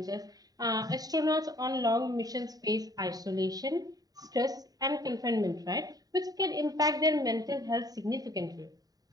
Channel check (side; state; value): left; late; 0.18 ms